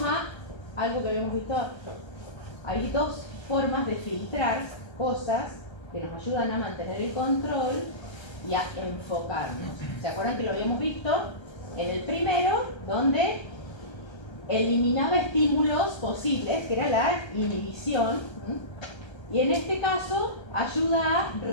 a algo que habíamos visto. Hay dos formas de filtrar cosas que nos ayudan a mantener el control y a enfocarnos. ¿Se acuerdan que lo habíamos visto? En el primero, donde eliminaba estímulos posibles, que era la inhibición, y en este caso ayuda a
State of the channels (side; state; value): right; late; 1.3 ms